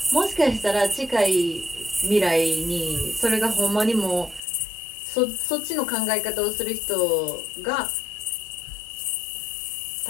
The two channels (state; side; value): drops out; right; at 4.4 s